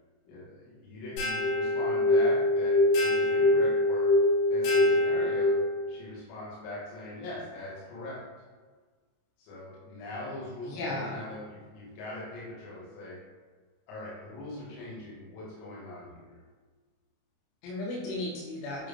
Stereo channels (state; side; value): late; right; 28 ms